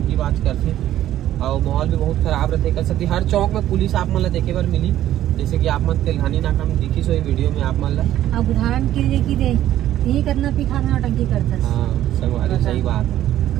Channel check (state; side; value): quieter; left; 12.7 dB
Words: बाज करते और माहौल भी बहुत खराब रहते। कर सकती हर चौक में पुलिस आप मन देखे बार मिली, जैसे कि आप मन तेलघानी नाका में दिखी सो वीडियो में आप मन ला। अब उदाहरण के लिए कि यही करना पी खा नौटंकी करता। हाँ संगवारी सही बात है।